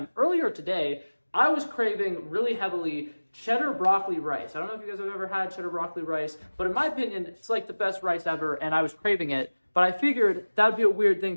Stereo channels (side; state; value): both; inverted; correlation -1.00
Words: Earlier today, I was craving really heavily cheddar broccoli rice. I don't know if you guys have ever had cheddar broccoli rice, but in my opinion, it's like the best rice ever, and I was craving it. But I figured that would be a weird